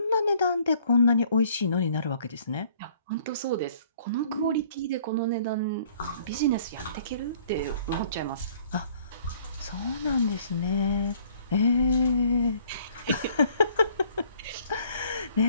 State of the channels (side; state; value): both; inverted; correlation -0.58